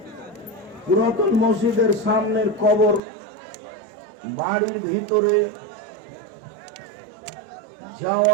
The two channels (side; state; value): left; drops out; at 3.0 s